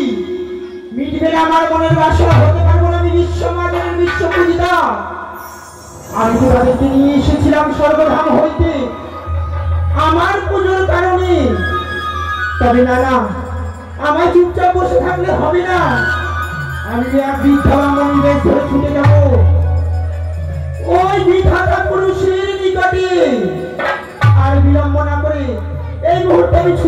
মিটবে না আমার মনের বাসনা, হতে পারবো না আমি বিশ্বমানের বিশ্বপূজিতা। আমি তো তাদেরকে নিয়ে এসেছিলাম স্বর্গধাম হইতে আমার পুজোর কারণে। তবে না না, আমার চুপচাপ বসে থাকলে হবে না, আমি এক বৃদ্ধা ব্রাহ্মণী বেশ ধরে ছুটে যাব ওই বিধাতা পুরুষের নিকটে। আর বিলম্ব না করে এই মুহূর্তে আমি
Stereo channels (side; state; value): both; identical; correlation 1.00